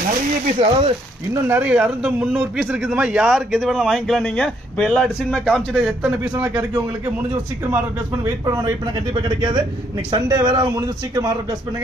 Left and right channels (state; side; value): normal; both; correlation 0.70